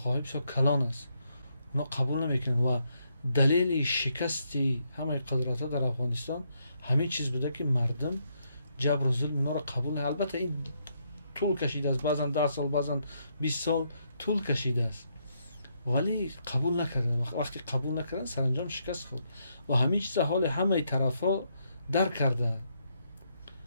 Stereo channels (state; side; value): inverted; both; correlation -0.76